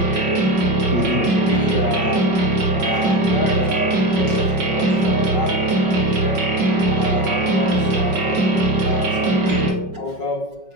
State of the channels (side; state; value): left; late; 5.3 ms